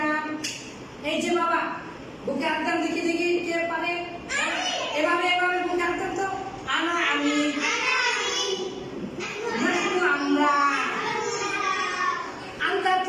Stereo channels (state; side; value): identical; both; correlation 1.00